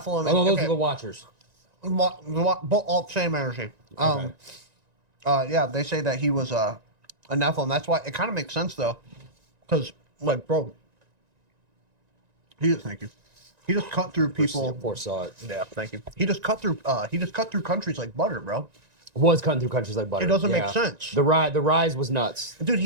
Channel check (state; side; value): late; left; 1.9 ms